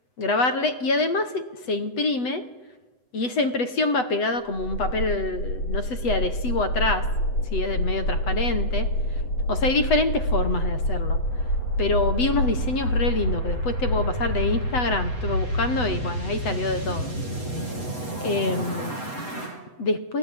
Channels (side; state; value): right; late; 8.0 ms